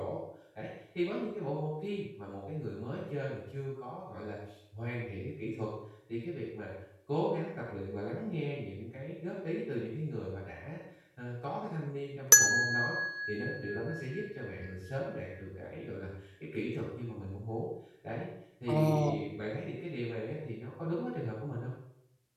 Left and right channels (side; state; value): both; identical; correlation 1.00